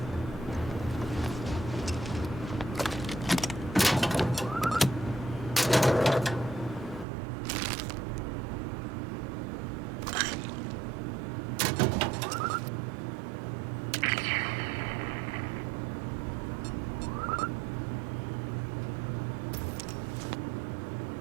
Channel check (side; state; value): left; drops out; at 7.1 s